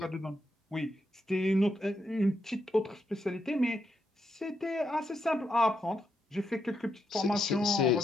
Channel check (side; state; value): both; normal; correlation 0.81